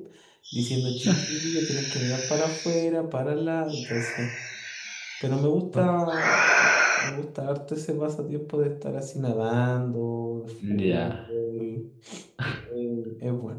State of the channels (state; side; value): identical; both; correlation 1.00